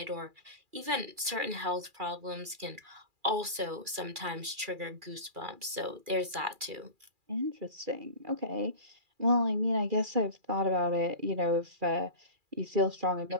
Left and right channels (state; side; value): late; left; 2.4 ms